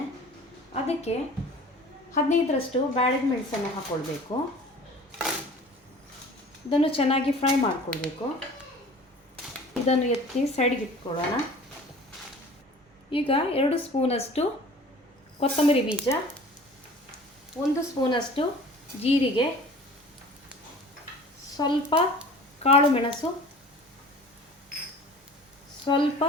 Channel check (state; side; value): normal; both; correlation 0.44